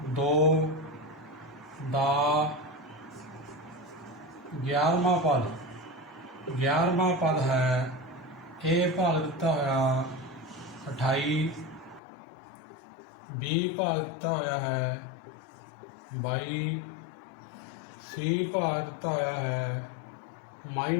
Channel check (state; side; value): drops out; right; at 12.0 s